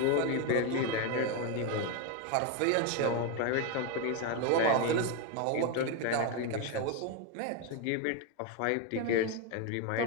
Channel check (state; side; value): different; both; correlation 0.02